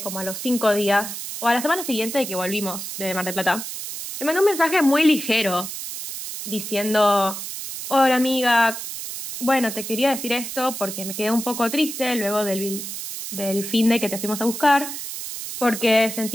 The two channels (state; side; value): noise; right; hiss, 7 dB below the sound